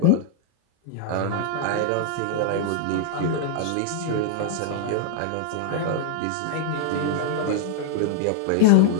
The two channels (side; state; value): both; different; correlation 0.00